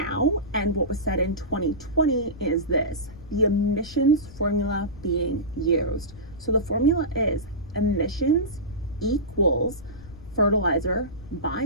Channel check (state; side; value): noise; left; rumble, 18 dB below the sound